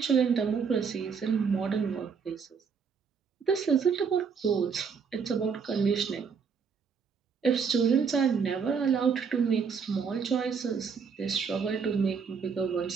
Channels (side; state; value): left; quieter; 6.0 dB